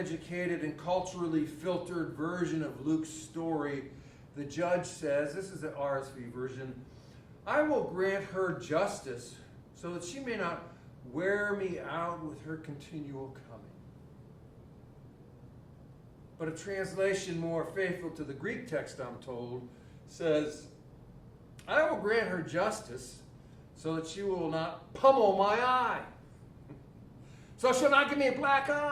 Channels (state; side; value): identical; both; correlation 1.00